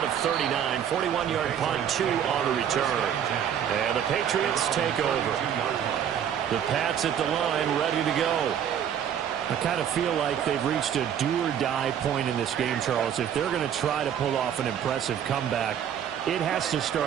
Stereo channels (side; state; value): left; quieter; 9.1 dB